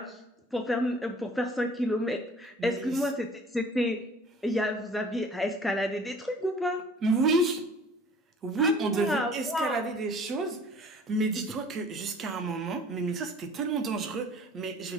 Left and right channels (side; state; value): both; normal; correlation 0.50